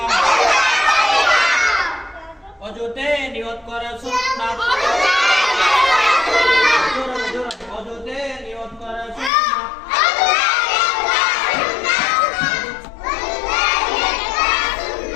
অজুতে নিয়ত করা সুন্নাত অজুতে নিয়ত করা সুন্নাত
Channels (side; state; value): right; drops out; at 9.3 s